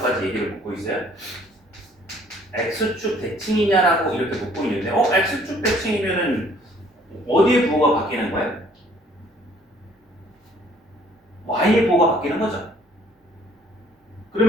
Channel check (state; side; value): normal; both; correlation 0.59